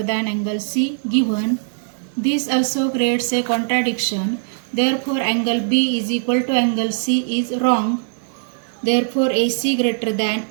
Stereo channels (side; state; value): left; silent; digital silence